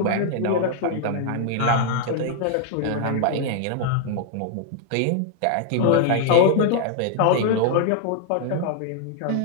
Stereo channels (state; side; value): different; both; correlation 0.00